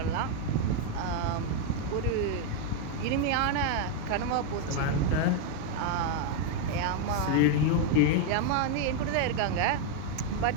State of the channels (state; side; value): different; both; correlation 0.01